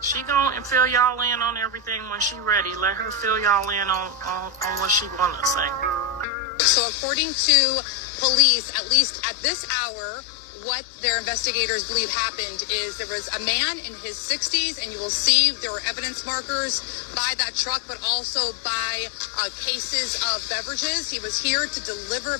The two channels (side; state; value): right; drops out; at 6.2 s